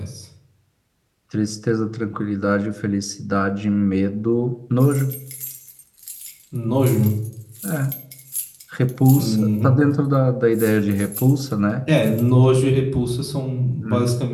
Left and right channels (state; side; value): identical; both; correlation 1.00